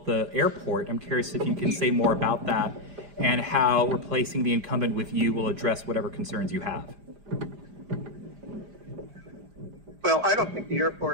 the airport. I'm curious if you can say more about that and how replacing the incumbent with you will address whatever concerns you have. Well, I don't think the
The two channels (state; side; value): late; left; 5.0 ms